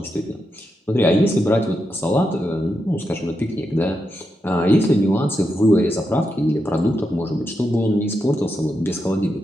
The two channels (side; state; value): both; normal; correlation 0.85